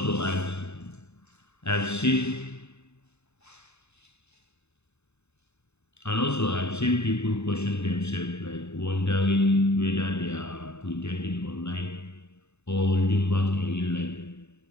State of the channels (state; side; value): late; right; 0.81 ms